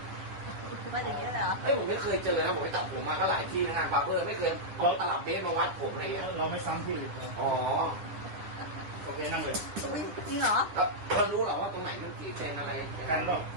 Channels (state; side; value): late; left; 10 ms